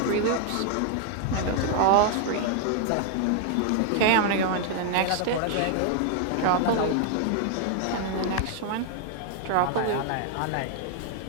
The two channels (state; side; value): different; both; correlation 0.00